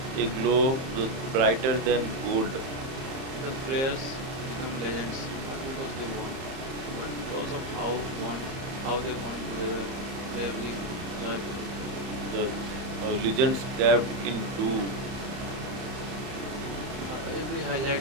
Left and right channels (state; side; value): late; left; 30 ms